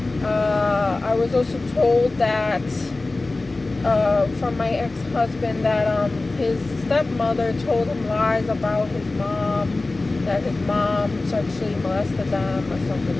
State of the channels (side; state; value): right; quieter; 3.2 dB